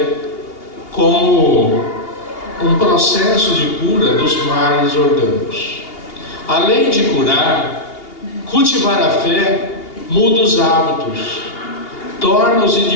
como um processo de cura dos males orgânicos. Além de curar, cultivar a fé muda os hábitos, torna os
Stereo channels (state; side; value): late; right; 2.8 ms